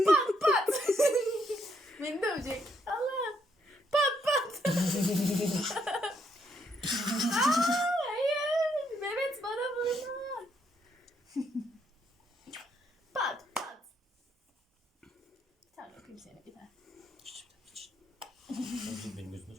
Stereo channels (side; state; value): both; normal; correlation 0.74